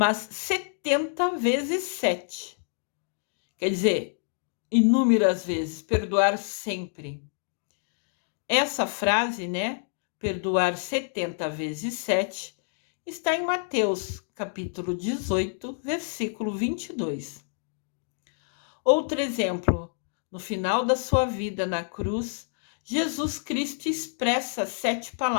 70 vezes 7. Quer dizer, inúmeras vezes, perdoar sempre. Essa frase, né, perdoar 70 vezes 7, está em Mateus, capítulo 18, versículo 22. Outro exemplo, no final da sua vida na cruz, Jesus Cristo expressa 7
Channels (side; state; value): right; silent; digital silence